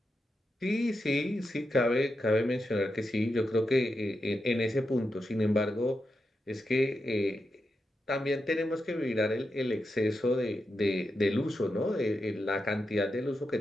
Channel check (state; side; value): normal; both; correlation 0.87